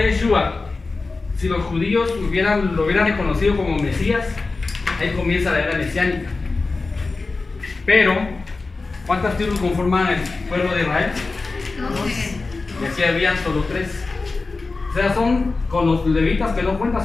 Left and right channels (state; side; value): quieter; right; 3.8 dB